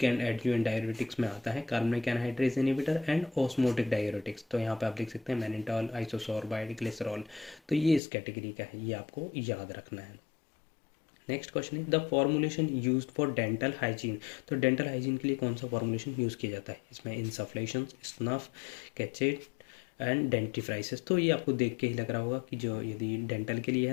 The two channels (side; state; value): right; drops out; at 8.0 s